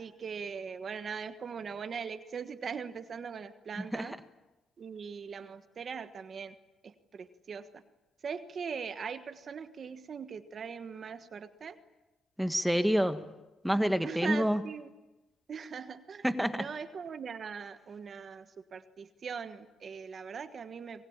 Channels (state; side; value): normal; both; correlation 0.94